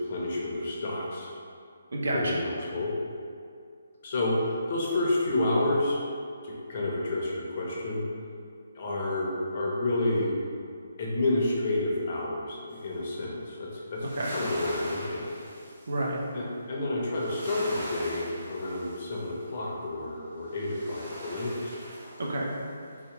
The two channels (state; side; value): inverted; both; correlation -0.77